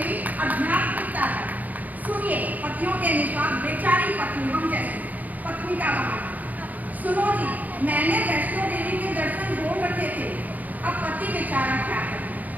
का। सुनिए पतियों के अनुसार बेचारी पत्नी, हम जैसे पत्नी का बहाना। सुनो जी, मैंने वैष्णो देवी के दर्शन बोल रखे थे, अब पति बेचारा क्या करे।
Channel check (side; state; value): left; late; 0.080 ms